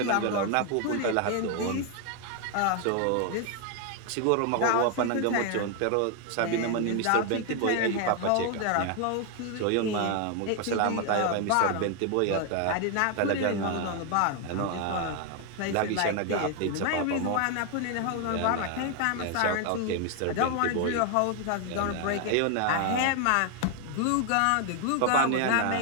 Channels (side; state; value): both; different; correlation 0.00